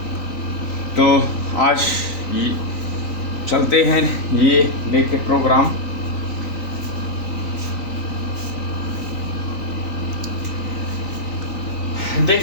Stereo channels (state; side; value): late; right; 3.9 ms